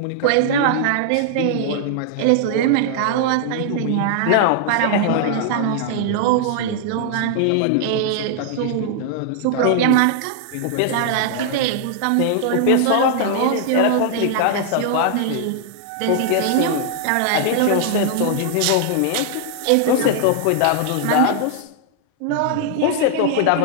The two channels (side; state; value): both; different; correlation -0.01